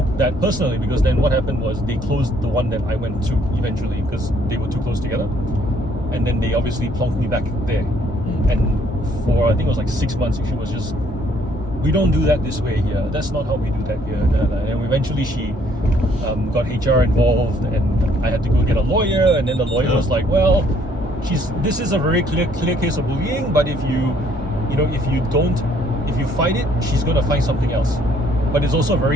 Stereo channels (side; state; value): both; normal; correlation 0.64